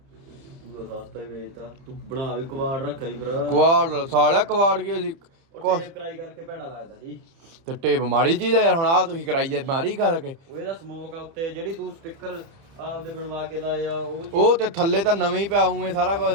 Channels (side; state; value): left; late; 30 ms